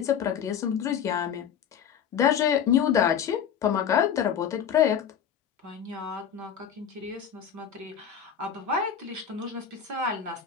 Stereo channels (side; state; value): right; quieter; 8.3 dB